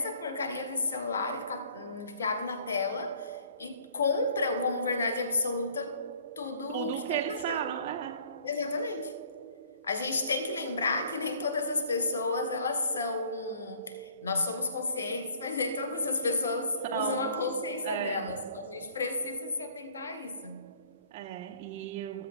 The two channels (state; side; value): inverted; both; correlation -0.55